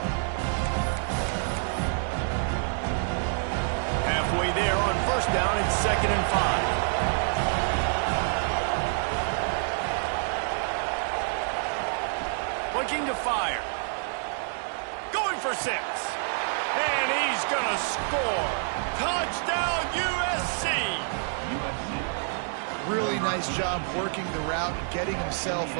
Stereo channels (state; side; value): silent; left; 57 dB below the other